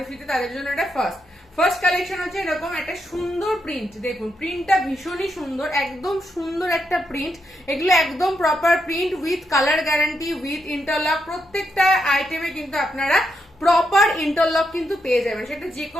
ফিতে তাদের জন্য এটা ফার্স্ট কালেকশন হচ্ছে এরকম একটা সুন্দর প্রিন্ট। দেখুন প্রিন্টটা ভীষণই সুন্দর, একদম সুন্দর একটা প্রিন্ট। এগুলো একদম proper print with colour guarantee, with interlock. প্রত্যেকটা আইটেমে কিন্তু আপনারা প্রপার ইন্টারলক কিন্তু পেয়ে যাবেন, সেটা যে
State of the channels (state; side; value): normal; both; correlation 0.82